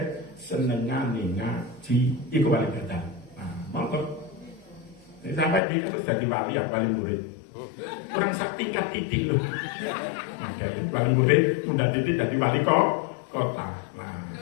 senengane ngaji. Iku wali badal. Nah, monggo. Ini sampai dia terus jadi wali ya, wali murid. Kurang sak tingkat titik loh. Nah, jadi wali murid udah titik jadi wali kota. Nah.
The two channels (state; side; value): drops out; right; at 5.6 s